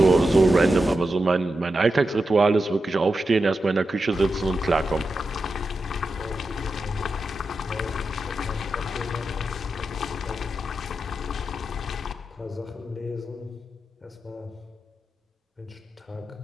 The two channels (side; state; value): both; normal; correlation 0.89